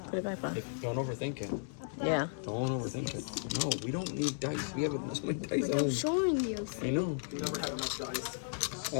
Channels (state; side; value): silent; right; digital silence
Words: Put it back on. Don't overthink it. Yeah. Don't overthink it. No, we don't need dice. We have so many dice at I'm home. showing you. I know. You never have enough dice.